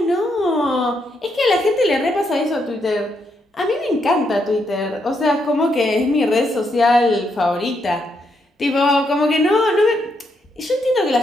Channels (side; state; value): both; normal; correlation 0.78